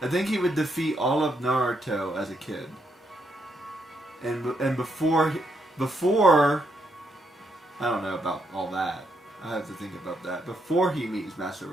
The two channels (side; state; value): both; normal; correlation 0.78